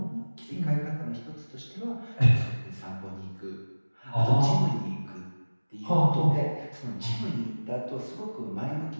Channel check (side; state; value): both; inverted; correlation -1.00